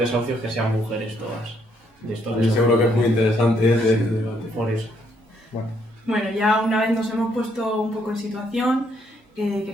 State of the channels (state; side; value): normal; both; correlation 0.71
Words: que sean mujeres todas. De estos Yo seguro que es muy interesante este debate. Por eso. Bueno, ya una vez nos hemos puesto un poco en situación,